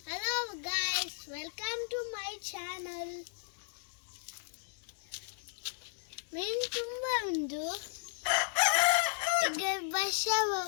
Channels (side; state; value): right; silent; digital silence